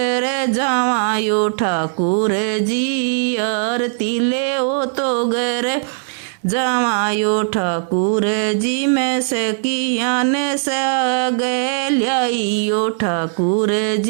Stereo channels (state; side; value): silent; left; 63 dB below the other